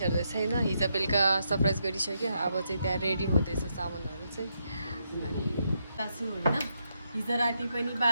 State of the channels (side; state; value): both; inverted; correlation -0.80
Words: छैन हिजो बेलुका सरप्राइज गरिसक्यो अब चाहिँ त्यहाँ रेडी हुँदैछ सामानहरू चाहिँ अनि तासु होइन हिजो राति पनि